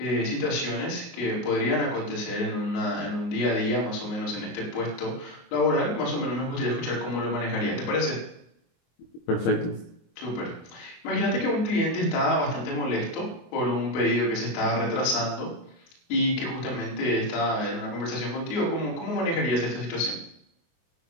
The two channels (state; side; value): late; right; 24 ms